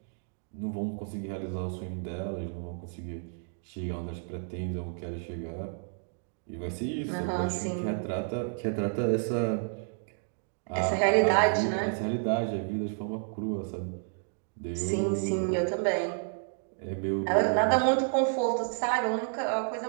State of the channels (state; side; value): silent; left; 57 dB below the other